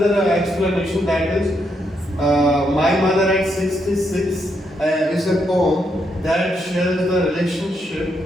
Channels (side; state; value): both; normal; correlation 0.78